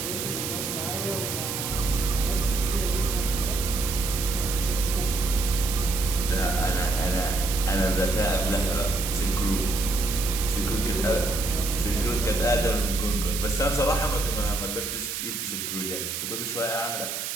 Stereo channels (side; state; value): right; noise; hiss, 4 dB below the sound